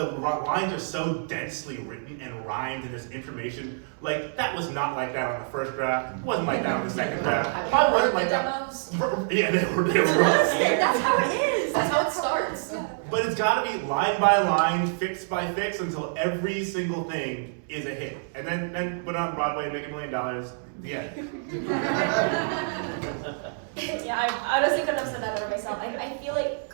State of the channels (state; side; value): silent; left; 60 dB below the other